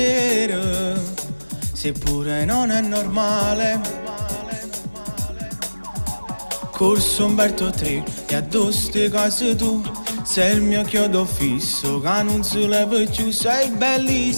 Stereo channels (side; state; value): both; inverted; correlation -1.00